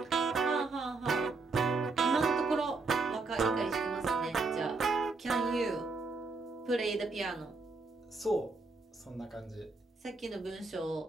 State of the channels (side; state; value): left; quieter; 3.9 dB